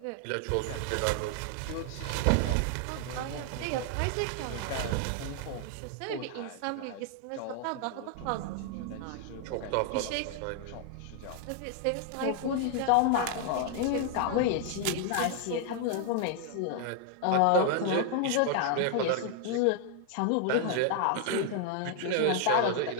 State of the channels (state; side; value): different; both; correlation 0.00